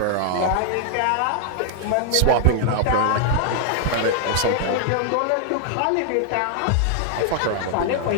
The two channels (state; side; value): different; both; correlation 0.00